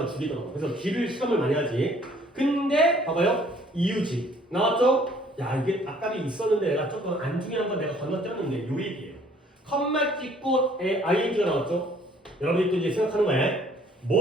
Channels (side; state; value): both; normal; correlation 0.58